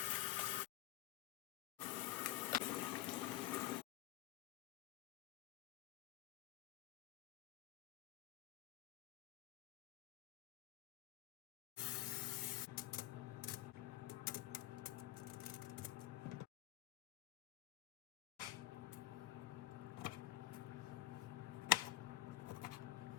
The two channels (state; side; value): quieter; right; 15.2 dB